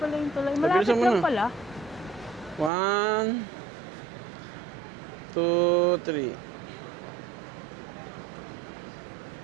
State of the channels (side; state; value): left; drops out; at 2.7 s